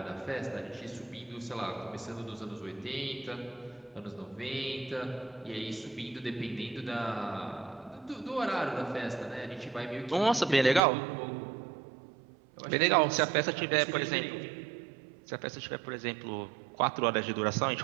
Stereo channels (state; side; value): drops out; left; at 10.8 s